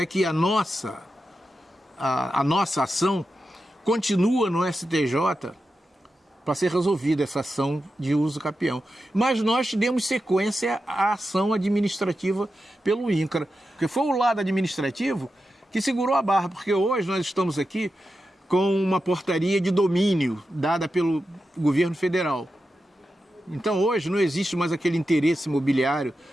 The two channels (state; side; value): normal; both; correlation 0.90